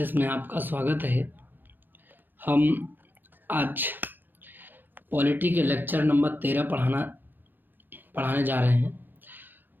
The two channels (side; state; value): left; late; 0.093 ms